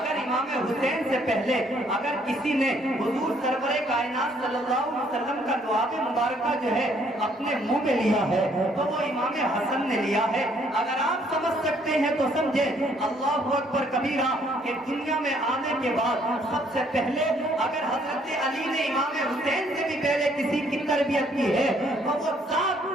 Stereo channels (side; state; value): both; normal; correlation 0.65